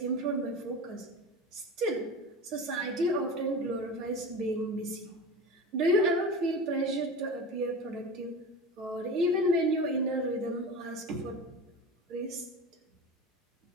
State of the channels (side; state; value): both; normal; correlation 0.30